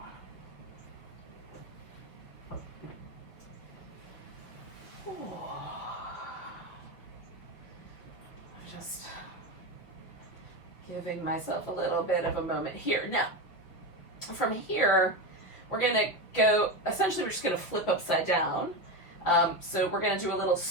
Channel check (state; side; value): late; right; 6.0 ms